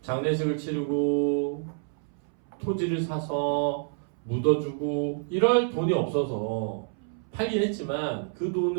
장례식을 치르고 토지를 사서 묻어주고 이럴 돈이 없어서 팔긴 했지만 그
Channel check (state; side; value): silent; left; 59 dB below the other